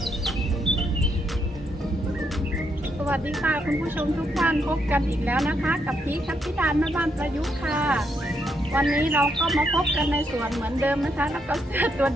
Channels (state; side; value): normal; both; correlation 0.78